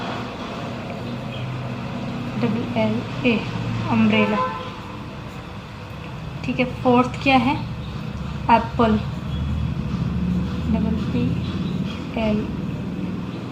अम्ब्रेला। ठीक है, फोर्थ क्या है, एप्पल, PPLE।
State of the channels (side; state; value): both; identical; correlation 1.00